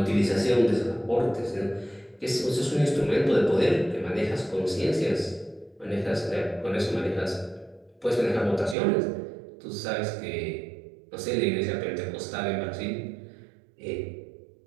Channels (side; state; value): left; drops out; at 8.8 s